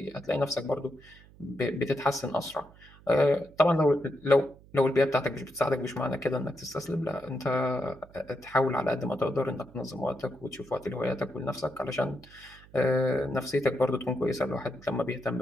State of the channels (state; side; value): noise; right; hum, 24 dB below the sound